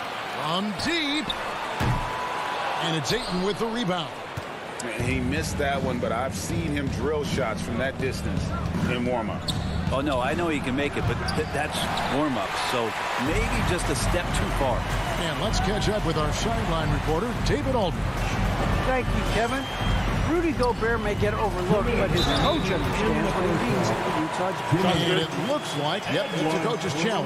From deep. And it's Ayton with the rebound. He missed that one, but I've seen him drill shots from that distance in warm-up. Oh, no, I know he can make it, but that's warm-up, so maybe just a step too far. And let's catch up with our sideline reporter, David Aldridge. Thank you, Kevin. Rudy Gobert may get overlooked, but his coach understands what he means to the Utah Jazz. And it looks like, yep, it's a coach's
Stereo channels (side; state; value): both; identical; correlation 1.00